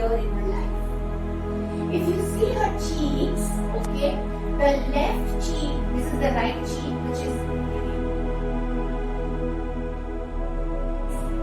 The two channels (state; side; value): identical; both; correlation 1.00